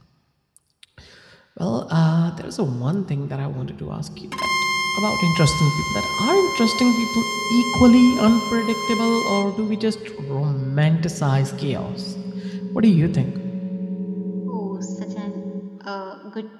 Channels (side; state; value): both; identical; correlation 1.00